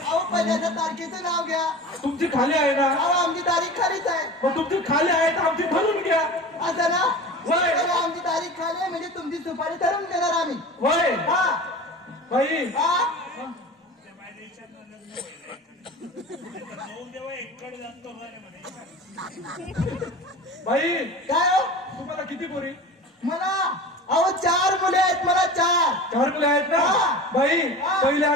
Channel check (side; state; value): both; normal; correlation 0.35